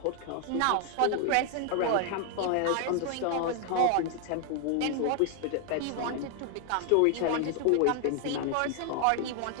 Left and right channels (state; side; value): different; both; correlation 0.00